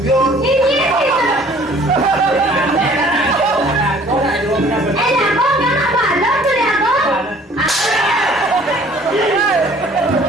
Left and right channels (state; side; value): normal; both; correlation 0.54